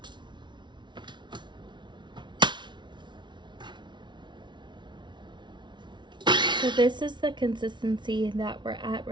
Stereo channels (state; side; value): late; left; 0.23 ms